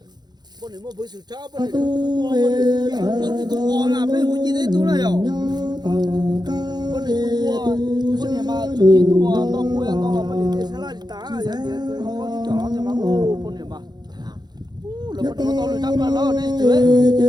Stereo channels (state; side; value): late; left; 0.20 ms